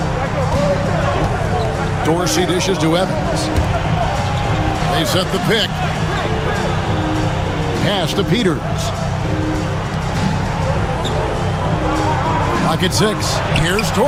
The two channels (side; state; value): both; identical; correlation 1.00